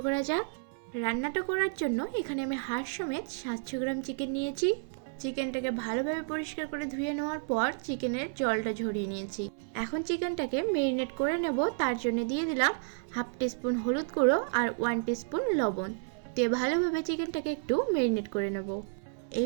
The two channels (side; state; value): left; silent; 57 dB below the other